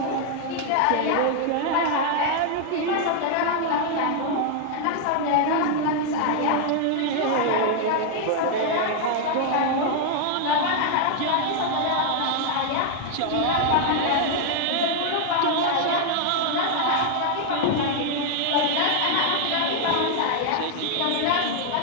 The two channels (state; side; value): different; both; correlation 0.00